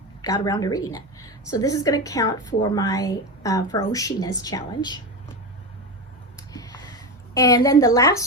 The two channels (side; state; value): both; normal; correlation 0.18